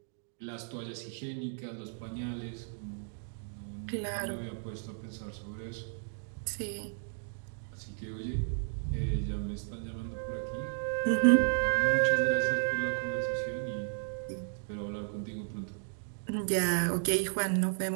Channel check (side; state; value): left; silent; digital silence